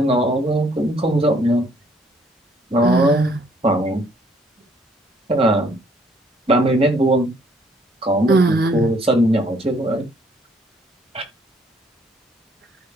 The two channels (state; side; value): normal; both; correlation 0.64